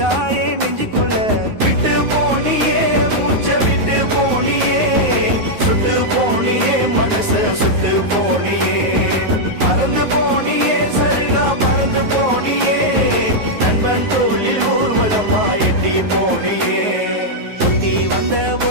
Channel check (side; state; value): left; late; 9.4 ms